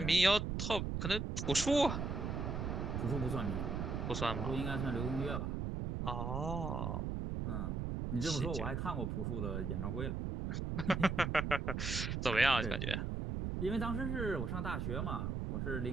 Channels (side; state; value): right; noise; rumble, 2 dB below the sound